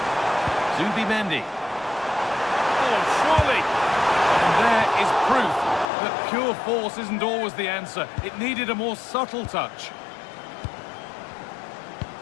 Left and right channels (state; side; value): drops out; right; at 5.9 s